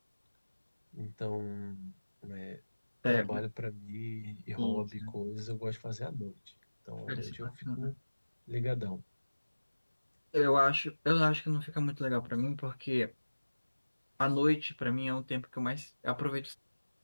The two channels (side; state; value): both; inverted; correlation -1.00